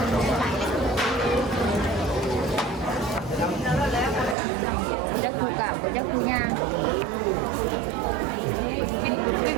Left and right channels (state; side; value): drops out; left; at 4.4 s